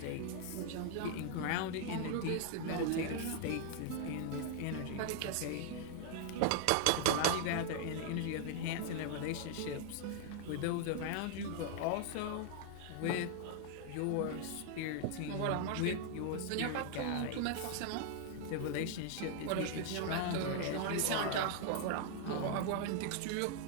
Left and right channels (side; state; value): both; different; correlation 0.00